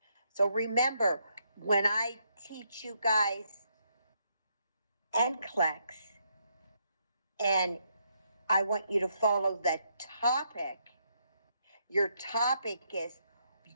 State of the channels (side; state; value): both; inverted; correlation -0.76